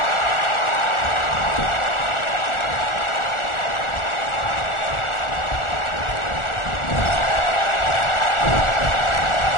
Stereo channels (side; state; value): right; late; 1.4 ms